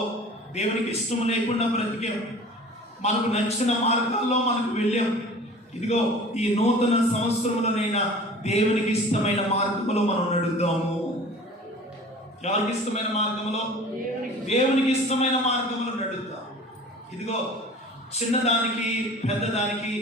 దేవునికి ఇష్టం లేకుండా బ్రతికాం, మనకు నచ్చిన మార్గాల్లో మనకు వెళ్ళాం. ఇదిగో ఈ నూతన సంవత్సరంలోనైనా దేవునికి ఇష్టమైన మార్గంలో మనం నడుద్దాము. ఎవరికి ఇష్టమైన మార్గంలో? దేవునికి ఇష్టమైన మార్గంలో నడుద్దాం. ఇదిగో చిన్నదానికి పెద్దదానికి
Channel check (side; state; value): both; normal; correlation 0.43